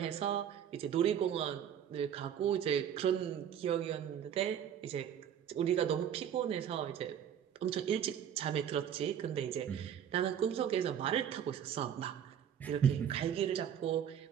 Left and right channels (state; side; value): quieter; left; 9.1 dB